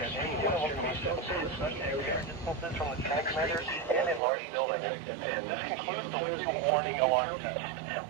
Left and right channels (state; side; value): drops out; left; at 4.2 s